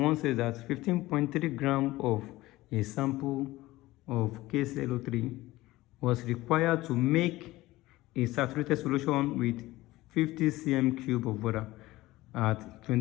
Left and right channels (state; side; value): quieter; right; 18.1 dB